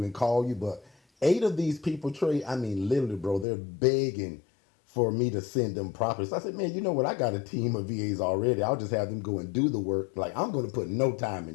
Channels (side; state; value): right; drops out; at 3.5 s